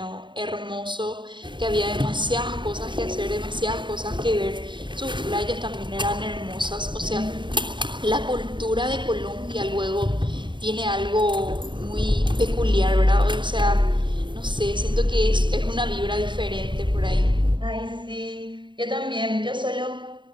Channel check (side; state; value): left; late; 0.23 ms